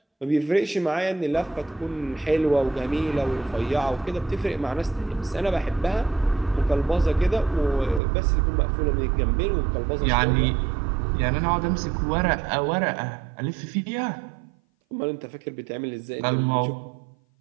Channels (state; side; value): drops out; left; at 8.0 s